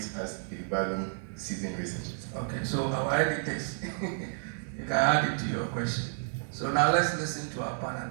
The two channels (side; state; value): left; silent; digital silence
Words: as they value seasoned researchers? Okay, so our editors, you can add it to your question. So now let's listen to our